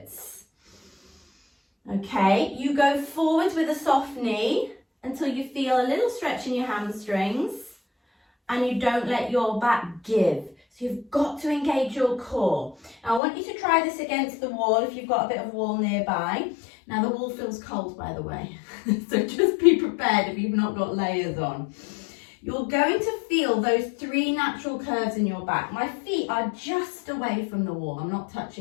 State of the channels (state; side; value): drops out; right; at 13.2 s